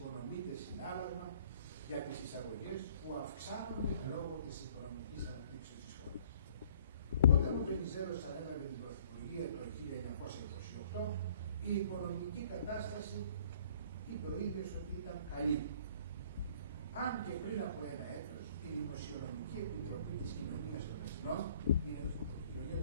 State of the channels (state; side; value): inverted; both; correlation -0.56